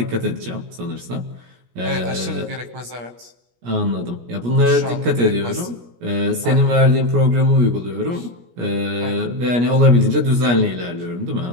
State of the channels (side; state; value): left; late; 17 ms